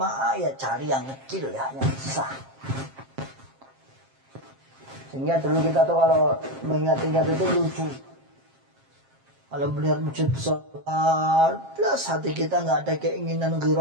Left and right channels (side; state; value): left; late; 7.5 ms